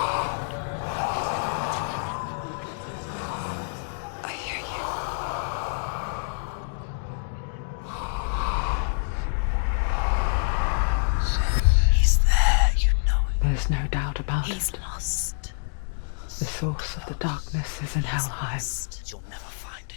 I hear you. He's there, you know it. There's no doubt about He's it. lost. The source of the darkness is in Helheim,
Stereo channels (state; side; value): silent; right; digital silence